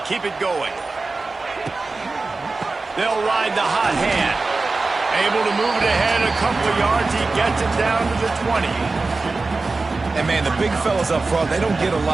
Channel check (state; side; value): quieter; left; 3.7 dB